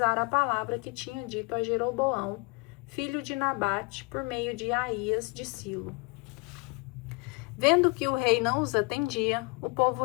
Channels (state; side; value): quieter; right; 28.0 dB